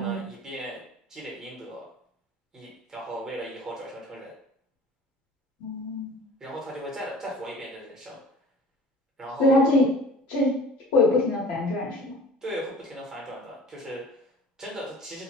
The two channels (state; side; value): normal; both; correlation 0.44